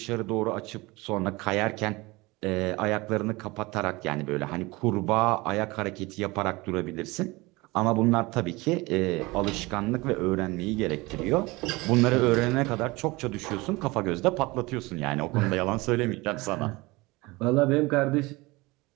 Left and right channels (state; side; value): quieter; left; 22.7 dB